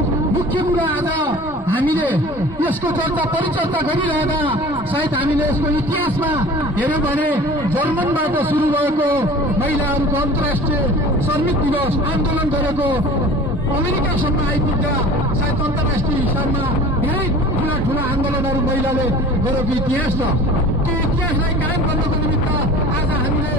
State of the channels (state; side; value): normal; both; correlation 0.42